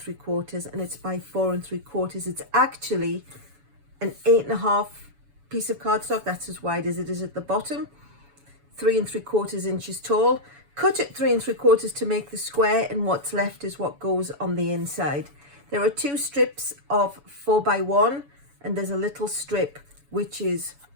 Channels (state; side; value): late; left; 7.0 ms